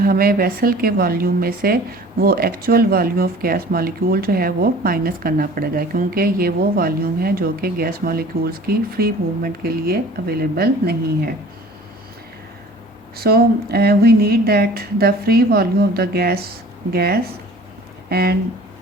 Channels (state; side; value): normal; both; correlation 0.46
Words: वेसल के वॉल्यूम में से वो actual volume of gas molecule जो है वो माइनस करना पड़ेगा, क्योंकि ये वो वॉल्यूम है जो कि गैस मॉलिक्यूल्स की फ्री मूवमेंट के लिए अवेलेबल नहीं है। So we need that the free volume of the gas and